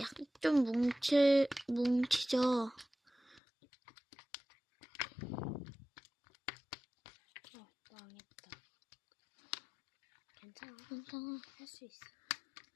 좀 뭉치죠? 망했다. 괜찮아. 할 수 있어.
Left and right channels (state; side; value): drops out; right; at 3.4 s